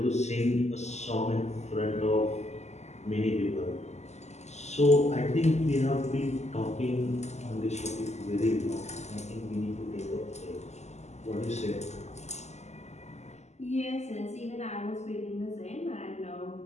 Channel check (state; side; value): late; right; 0.33 ms